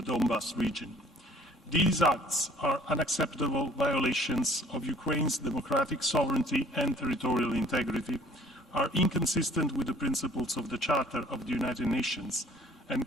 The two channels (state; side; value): normal; both; correlation 0.55